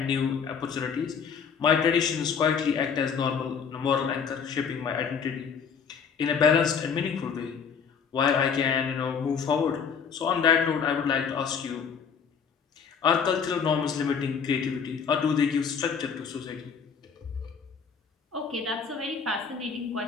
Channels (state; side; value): quieter; right; 6.4 dB